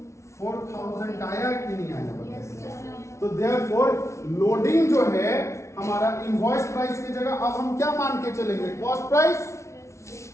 4000 आया कि नहीं आया? तो देयरफॉर लोडिंग जो है हमारा इनवॉइस प्राइस की जगह अब हम क्या मान के चलेंगे, कॉस्ट प्राइस।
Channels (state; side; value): late; right; 0.14 ms